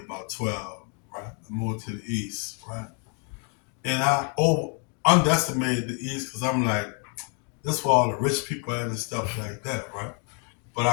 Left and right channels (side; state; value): right; quieter; 39.3 dB